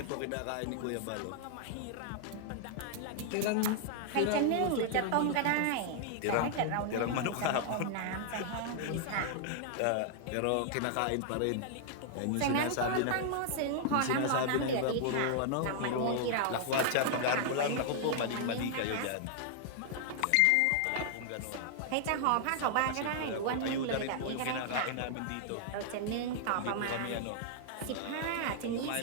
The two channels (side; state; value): both; different; correlation -0.01